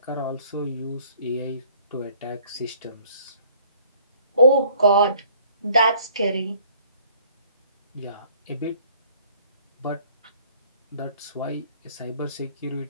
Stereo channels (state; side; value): inverted; both; correlation -0.58